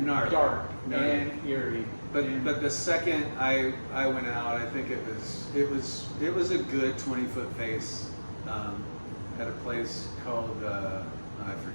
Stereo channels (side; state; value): both; inverted; correlation -1.00